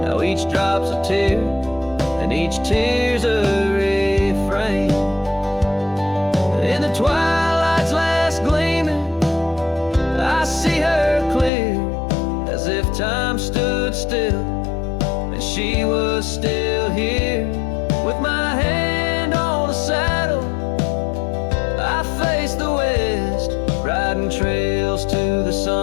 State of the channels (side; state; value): right; drops out; at 11.5 s